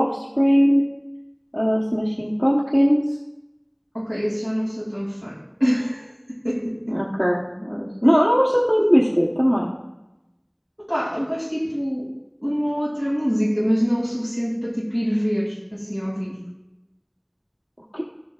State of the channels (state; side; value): identical; both; correlation 1.00